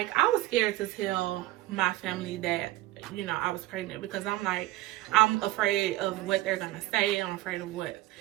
I was scared to tell my family that, you know, I was pregnant, because I'm like, I'm afraid of what they're gonna say. I'm afraid of what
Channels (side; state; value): left; quieter; 17.8 dB